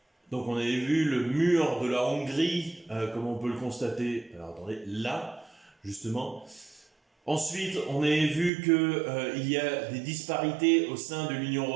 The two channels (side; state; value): left; drops out; at 8.5 s